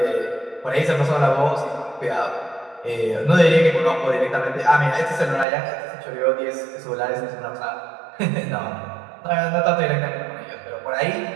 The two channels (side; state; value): left; drops out; at 5.5 s